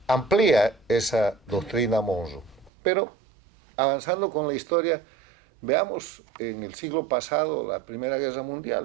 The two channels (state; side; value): drops out; left; at 2.7 s